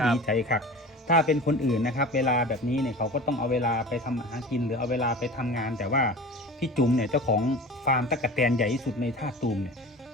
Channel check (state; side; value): normal; both; correlation 0.36